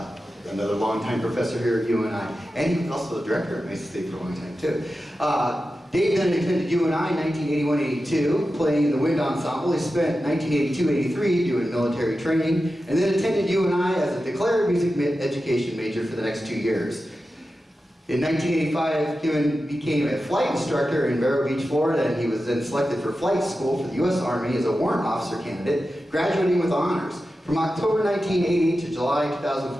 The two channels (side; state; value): both; normal; correlation 0.92